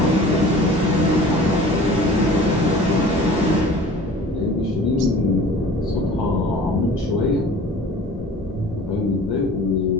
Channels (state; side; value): normal; both; correlation 0.45